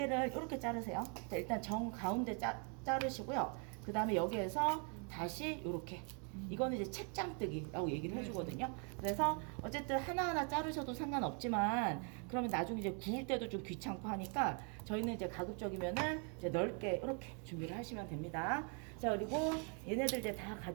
이렇게 자르세요. 자, 일단 정 가운데 자르시고요. 그 다음에 여기에서 다시 이렇게, 이거는 이제 책장뜨기라고 얘기를 해주거든요. 그래서 어쨌든 하나하나 자르셔도 상관없지만, 그러면 나중에 이제 구울 때도 좀 귀찮고 하니까 저희는 이제 가급적이면은 이제 넓게 이렇게 준비를 하시면 됩니다. 자, 그리고 얘네들 이제 다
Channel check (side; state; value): left; quieter; 38.0 dB